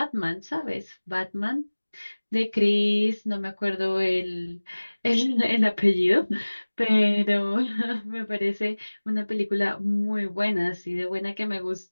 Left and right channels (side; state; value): both; inverted; correlation -1.00